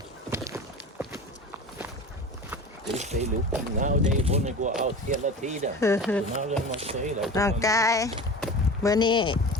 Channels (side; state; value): both; normal; correlation 0.33